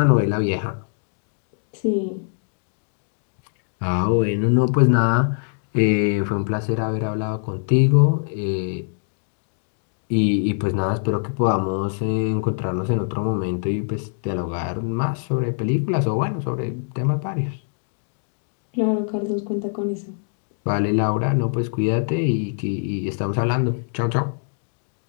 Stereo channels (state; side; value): silent; right; digital silence